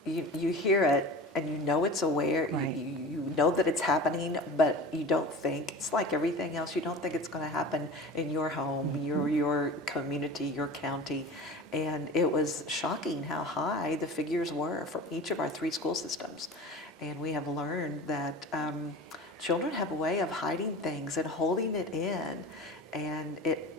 You hear it, and you know it's aware, right. you know that it's happening, but you don't think, it's like everything else, you don't think it's going to happen in your home, your community, your county. And it was shocking how high the figures were from each of our 3 school systems. And we have learned that children have a way of hiding things and holding it in. and it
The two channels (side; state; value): both; normal; correlation 0.36